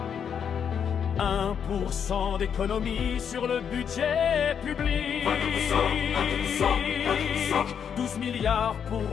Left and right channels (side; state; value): right; quieter; 7.7 dB